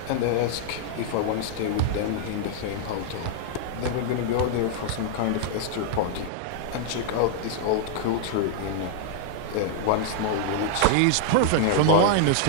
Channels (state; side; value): different; both; correlation -0.01